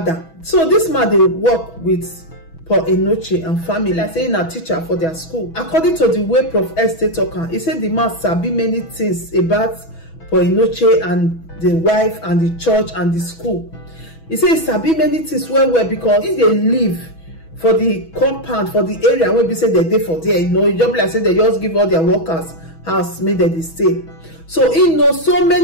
So this man they work with for Enenche and family, like saying a teacher for their school. According to the way Prof S stay talking, he said the man sabi many things about for Enenche and the wife and the church and the school. He said he sabi many things well because if they live for the compound, for the area where we say they dey for there, you know, you just like say they just give all their workers house made they stay. So he knows so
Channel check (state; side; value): late; right; 6.1 ms